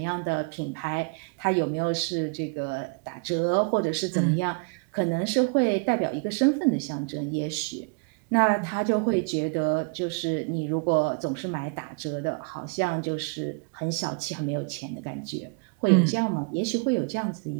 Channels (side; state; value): left; quieter; 33.6 dB